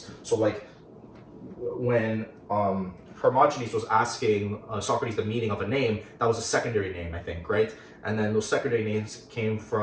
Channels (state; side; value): identical; both; correlation 1.00